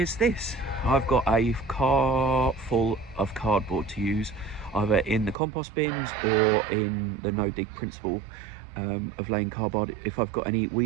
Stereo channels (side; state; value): left; drops out; at 5.4 s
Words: this. I've got a car full of cardboard to use, either in the compost bins or in the no-dig principle of laying cardboard if I've got any